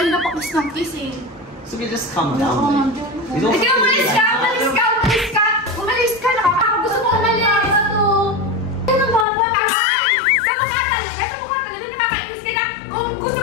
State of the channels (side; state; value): right; drops out; at 9.2 s